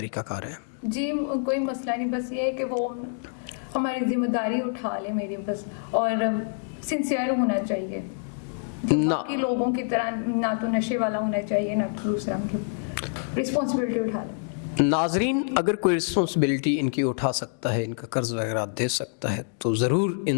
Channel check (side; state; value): right; silent; digital silence